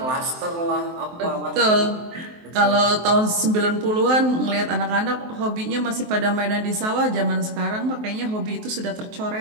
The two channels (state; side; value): late; left; 23 ms